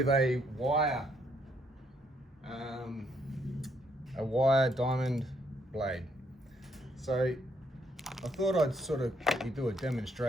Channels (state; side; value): normal; both; correlation 0.71